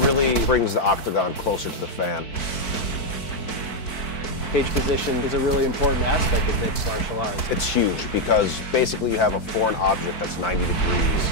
brings the octagon closer to the fan. Cage position is a really important aspect of mixed martial arts. It's huge because basically you have a foreign object that's 90 degrees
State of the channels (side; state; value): right; late; 4.5 ms